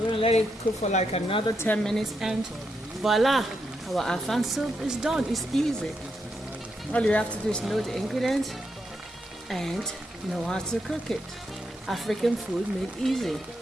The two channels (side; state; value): both; normal; correlation 0.82